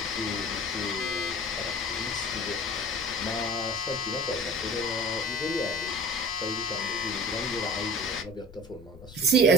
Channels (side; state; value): left; noise; rumble, 19 dB below the sound